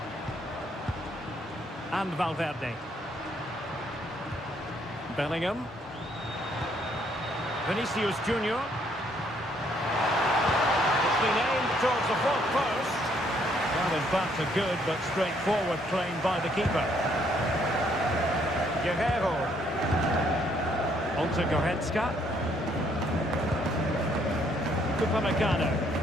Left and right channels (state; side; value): normal; both; correlation 0.68